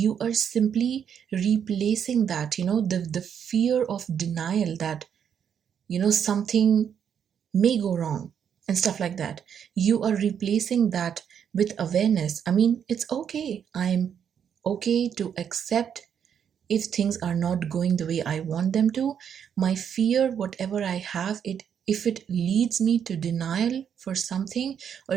are simply replacing that, the fear of denial, that something may go wrong and stuff like that. You are replacing that with awareness. I mean, it's okay. I'm okay to accept if things are not going the way I want them to. My fear, whatever I have, it if it leads me to denial for something, or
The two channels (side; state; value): left; quieter; 8.2 dB